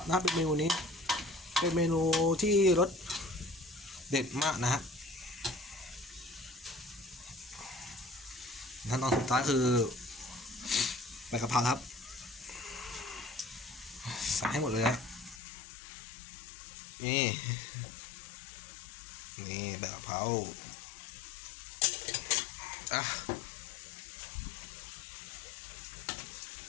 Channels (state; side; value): drops out; right; at 15.4 s